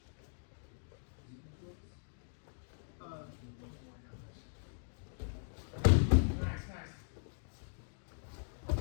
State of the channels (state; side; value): silent; right; digital silence